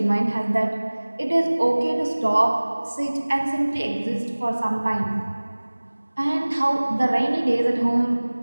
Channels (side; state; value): both; inverted; correlation -1.00